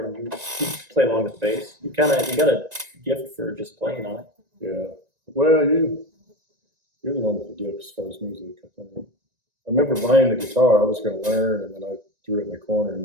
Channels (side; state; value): left; late; 1.9 ms